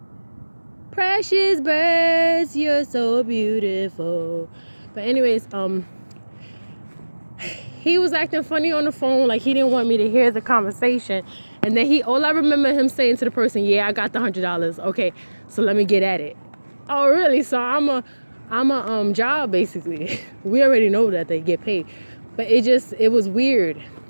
Precious birds, you're so beautiful. But anyways, he was acting funny on the phone, like he didn't want me to hear the conversation. And then all I remember him saying to the person, yeah, I got the $100. Okay, so let me get at it. Oh, really? So I'm a job, basically. We already know that they get paid. But it was weird.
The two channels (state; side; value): inverted; both; correlation -1.00